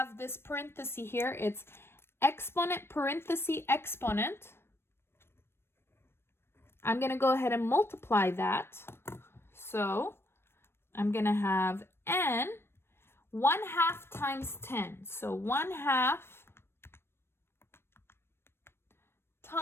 this parenthesis here. It's exponent parenthesis exponent. I'm going to go ahead and multiply that. So I'm going to have n 1/2 times 10. So 1/2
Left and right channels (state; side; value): late; right; 0.12 ms